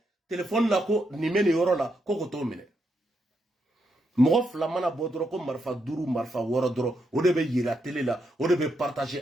téléphone la ko nin bɛ nin yɔrɔ la ko k'o t'o minɛ mɔgɔ fila mana bɔ dɔrɔn ko marifa 5 marifa 6 dɔrɔn o de bɛ yira télé la o de bɛ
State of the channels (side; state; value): both; normal; correlation 0.81